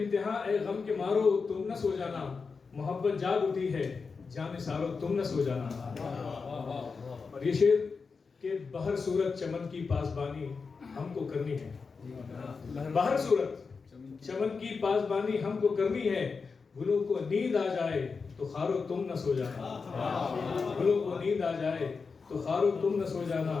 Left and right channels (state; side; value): quieter; right; 4.9 dB